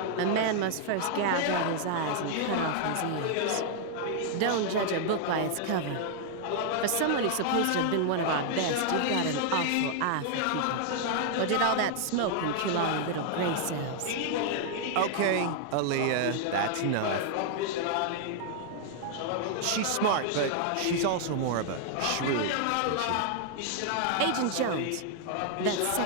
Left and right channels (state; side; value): different; both; correlation 0.00